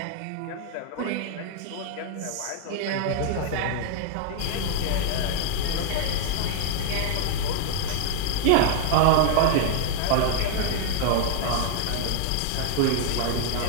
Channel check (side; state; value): both; different; correlation 0.00